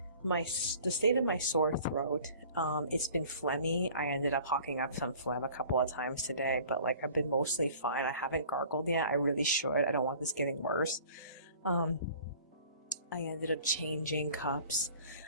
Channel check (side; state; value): both; inverted; correlation -0.48